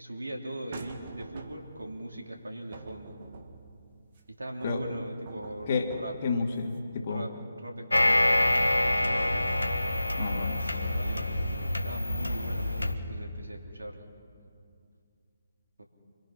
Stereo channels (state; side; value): inverted; both; correlation -0.92